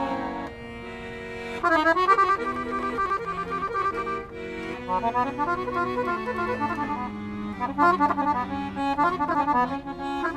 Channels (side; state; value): both; identical; correlation 1.00